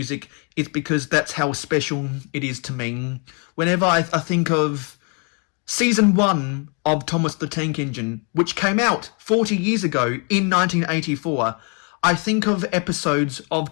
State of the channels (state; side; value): quieter; right; 35.0 dB